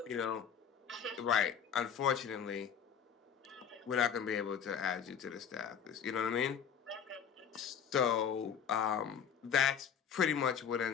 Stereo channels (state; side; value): quieter; right; 7.7 dB